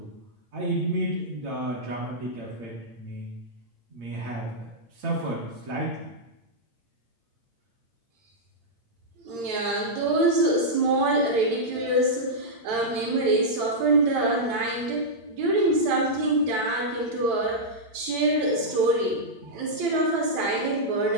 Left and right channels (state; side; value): late; left; 8.7 ms